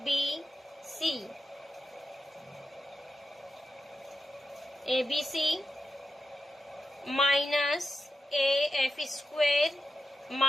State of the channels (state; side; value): normal; both; correlation 0.89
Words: ABC minus AF square